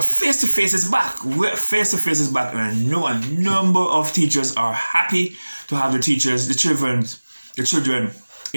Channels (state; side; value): inverted; both; correlation -1.00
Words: face-to-face is back. Face-to-face is back, and I know a number of teachers are happy to have the children